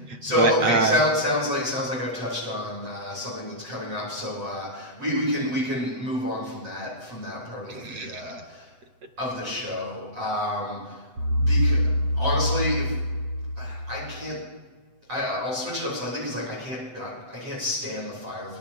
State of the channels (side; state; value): left; late; 8.0 ms